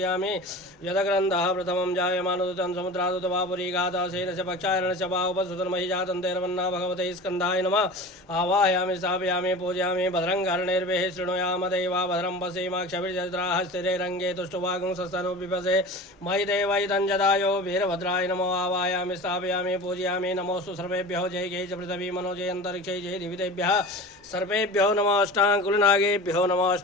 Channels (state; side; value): normal; both; correlation 0.35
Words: यदग्रन्थः प्रथमं जायमानोदतं समुद्रादुतवापुरीगाता सेन च पक्षायण च बाहुपसुतन्महि जातं तैर्वन्ना भगवते स्कन्धाय नमः। आवाहयामि स्थापयामि पूजयामि। भद्रं कर्णैर्भिः शृणुयाम देवा भद्रं पश्येमाक्षभिर्जत्राः स्थिरे रङ्गे तुष्टुवागुं सस्तनु पिबसे मयि देवैतं जदायो वीरभद्राय नमो। आवाहयामि स्थापयामि पूजयामि। नमोऽस्तु सर्वेभ्यो जय गे च पृथिवी मनो जय अन्तरिक्षे जय दिवितेभ्यः सर्वेभ्यो नमः। अष्टाङ्कुलनागेभ्यो नमः।